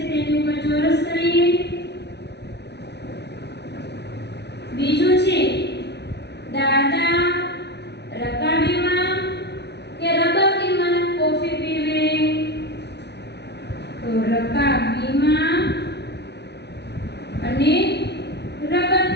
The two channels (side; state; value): right; late; 0.49 ms